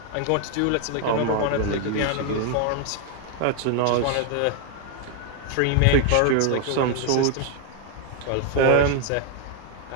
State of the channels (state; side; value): different; both; correlation 0.00